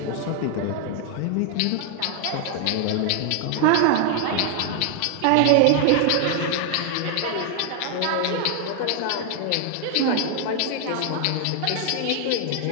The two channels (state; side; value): different; both; correlation 0.00